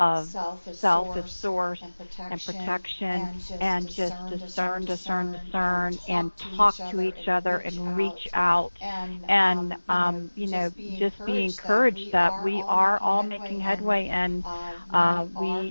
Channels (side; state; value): both; inverted; correlation -1.00